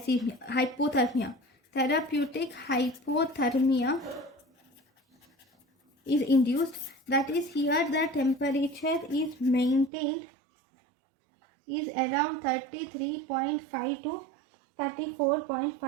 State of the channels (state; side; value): drops out; left; at 9.9 s